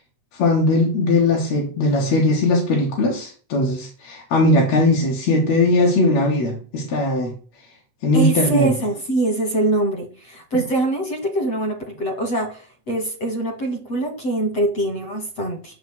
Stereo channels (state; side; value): late; right; 7.9 ms